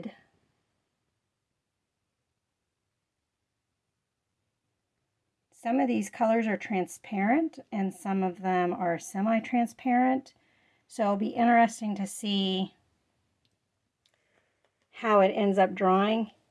some of these colors are transparent and some of them are semi-transparent. So it'll be interesting to see how it ends up drying.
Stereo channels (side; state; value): both; identical; correlation 1.00